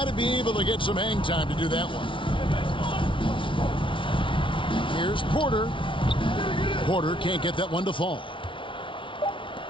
to be able to get some hang time to do that one. Here's Porter. Porter can't get that one to fall.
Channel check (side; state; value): right; late; 0.25 ms